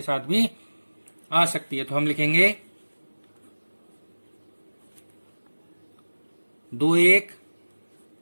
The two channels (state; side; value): inverted; both; correlation -1.00